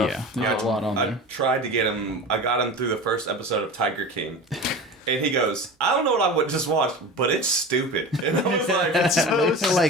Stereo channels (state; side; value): normal; both; correlation 0.33